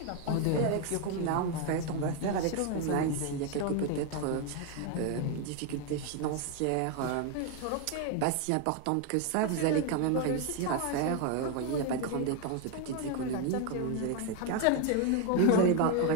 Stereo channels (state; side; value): different; both; correlation 0.01